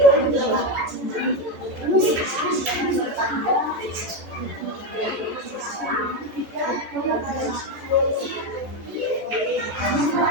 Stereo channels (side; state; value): left; late; 14 ms